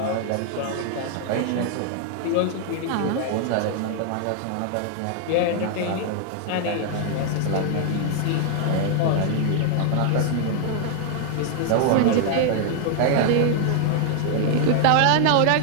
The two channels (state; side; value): different; both; correlation 0.00